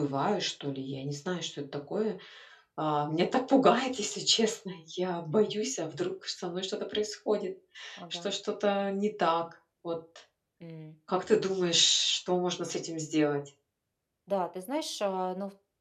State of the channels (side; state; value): both; identical; correlation 1.00